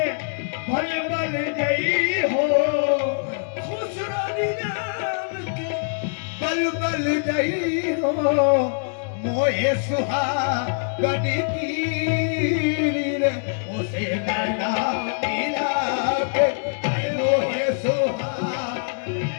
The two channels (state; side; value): silent; right; digital silence